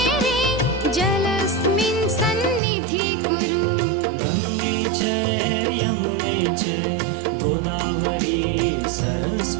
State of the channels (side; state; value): left; drops out; at 2.6 s